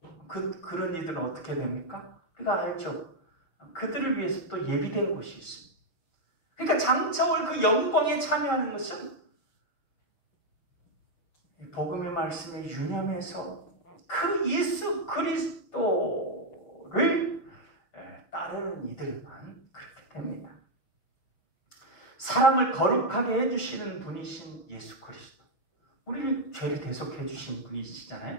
그런 이들은 어떻게 됩니까? 우리가 알죠. 그들을 위해서 또 예비된 곳이 있습니다. 그러니까 장차 올 그 영광에 참여하는 것은 복음의 말씀에 유념해서 그 예수 그리스도를 따르는 이들만 그렇게 됩니다. 사람을 거룩하게 해주시는 분이신 예수 그리스도, 우리를 죄를 대속해 주신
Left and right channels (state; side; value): late; right; 6.1 ms